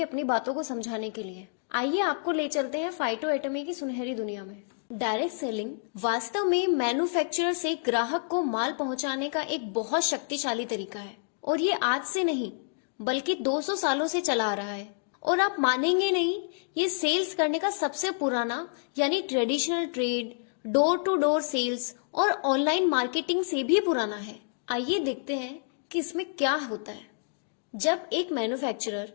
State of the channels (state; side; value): silent; right; digital silence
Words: अपनी बातों को समझाने के लिए। आइए आपको ले चलते हैं फाइटो एटॉमी की सुनहरी दुनिया में। डायरेक्ट सेलिंग वास्तव में मैन्युफैक्चरर से ग्राहक को माल पहुंचाने का एक बहुत शक्तिशाली तरीका है, और ये आज से नहीं बल्कि 200 सालों से चला आ रहा है। और आप मानेंगे नहीं, ये सेल्स करने का सबसे पुराना यानी traditional trade, door to door sales और ऑनलाइन मार्केटिंग से भी पुराना है। आइए देखते हैं कि इसमें क्या होता है। जब एक मैन्युफैक्चरर